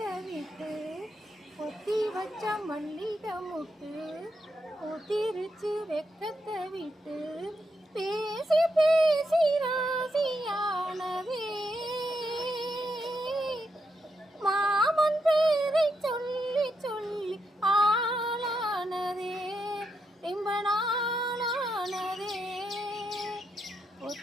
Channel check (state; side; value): normal; both; correlation 0.82